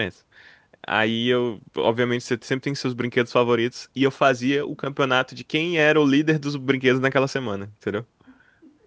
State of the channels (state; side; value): identical; both; correlation 1.00